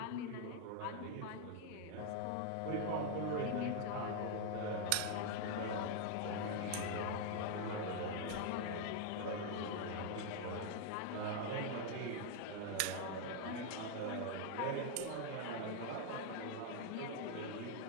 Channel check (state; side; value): different; both; correlation 0.00